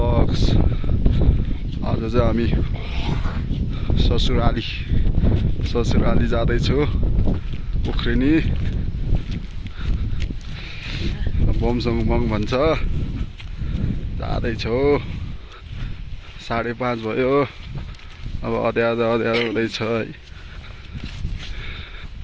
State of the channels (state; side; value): identical; both; correlation 1.00